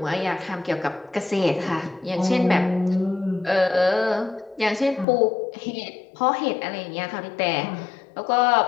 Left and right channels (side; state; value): right; drops out; at 5.1 s